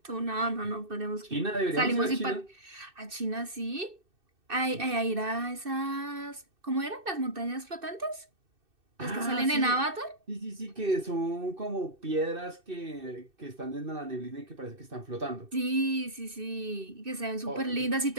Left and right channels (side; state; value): left; late; 2.6 ms